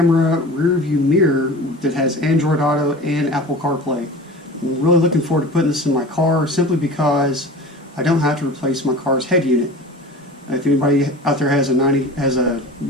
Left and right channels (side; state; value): both; normal; correlation 0.37